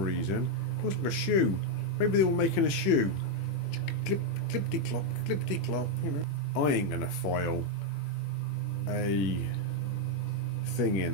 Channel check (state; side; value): late; right; 21 ms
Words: It looks like a shoe. Maybe they were making a shoe. Clippity clop, clippity clop. You know. I ain't gonna file a thing